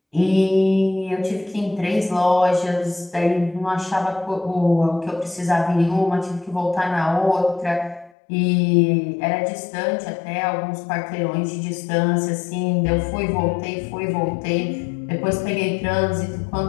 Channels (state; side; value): drops out; right; at 8.1 s